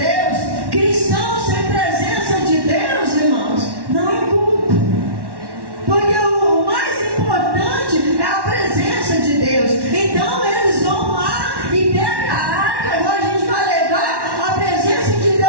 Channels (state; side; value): late; left; 1.1 ms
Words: cristão sem presença de Deus, irmãos, não é culto. Porque o mais importante é a presença de Deus. Então eles vão lá e pegam a arca. Agora a gente vai levar a presença de